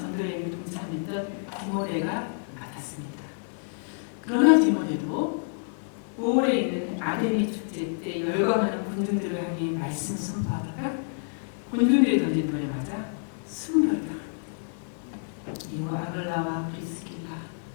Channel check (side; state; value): right; silent; digital silence